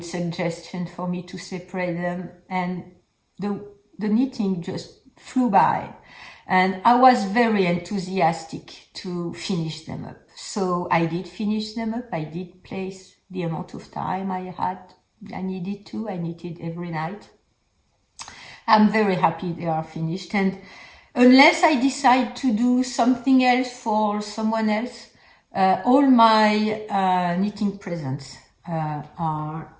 suggestion for me to separate them, and the knitting just flew by, and I was very enthusiastic to finish them up. So I did finish them up. I did place the amount of time I needed to. I knitted every night. I'm very happy they are finished, and unless I decide to do something else for someone else, all my knitting presents are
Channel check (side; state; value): both; identical; correlation 1.00